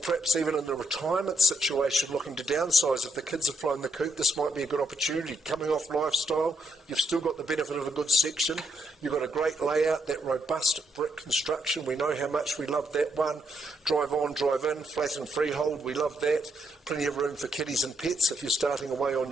even in a retirement situation looking to downsize, if the kids have flown the coop, this might be a good opportunity. Coming off lifestyle, you've still got the benefit of a good section. You've got a great layout, that robust brick construction. We know how much we love that one. Drive on, drive in, flat and freehold. We love that. Plenty of room for kiddies and pets if you're starting away on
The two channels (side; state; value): both; normal; correlation 0.77